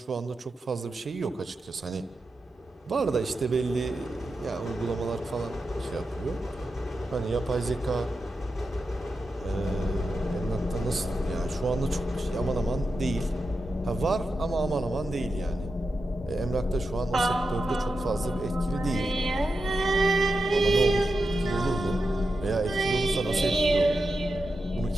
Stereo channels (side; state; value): both; normal; correlation 0.89